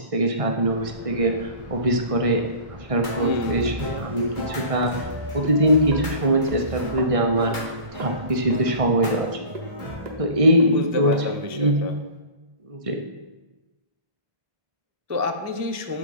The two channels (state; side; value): late; left; 1.6 ms